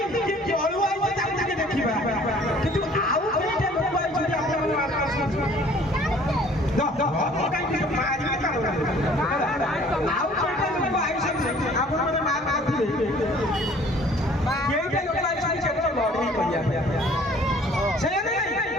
কি জলু আইছে তাকে তাকে দেখিবা কিন্তু আউ কেইটা লোক আইছନ୍ତି আপন আকাশ না কাই কিছু মারি আউ কেইটা লোক আইছନ୍ତି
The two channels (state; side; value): normal; both; correlation 0.54